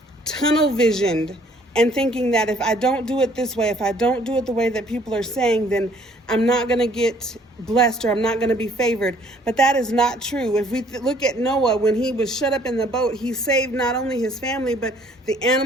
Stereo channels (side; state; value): both; normal; correlation 0.60